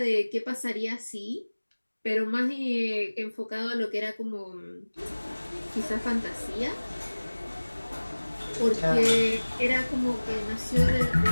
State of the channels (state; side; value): inverted; both; correlation -1.00